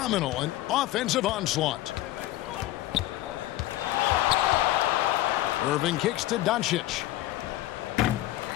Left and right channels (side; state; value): right; quieter; 15.6 dB